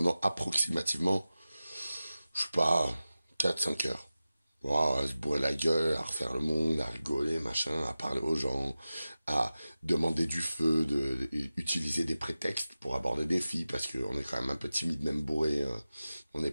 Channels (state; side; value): inverted; both; correlation -0.95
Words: approximativement, je sais pas, 4-5 heures. Wow, à se bourrer la gueule, à refaire le monde, à rigoler, machin, à parler aux gens, à demander du feu, utiliser des prétextes pour aborder des filles, parce qu'on est quand même un peu timide, même bourré, on n'est